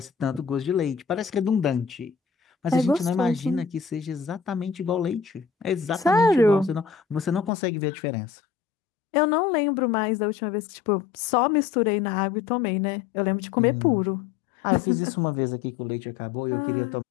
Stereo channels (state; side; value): drops out; right; at 7.5 s